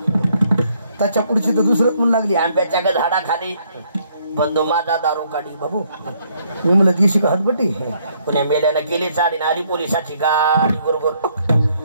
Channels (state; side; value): inverted; both; correlation -0.69